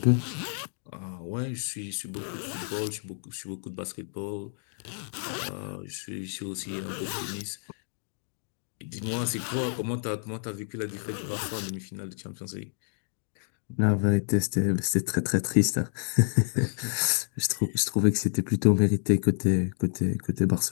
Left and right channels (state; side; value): silent; right; digital silence